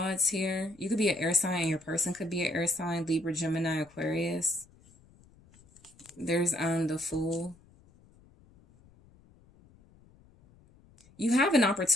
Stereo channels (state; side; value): noise; left; rumble, 28 dB below the sound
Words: here. You could be an air sign and your person could be an air sign. Libra, Gemini, Aquarius. There's the Fool. You have an